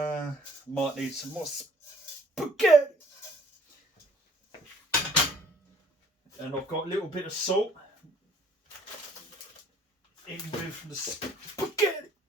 need some more spaghetti. And I've got a little bit of salt in with the spaghetti.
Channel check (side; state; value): both; normal; correlation 0.58